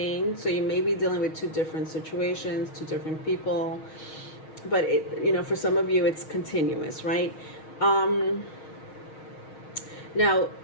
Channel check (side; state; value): right; late; 6.4 ms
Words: So you may be dealing with two different situations, two different people. But for some of you, it's continuous, right? Now,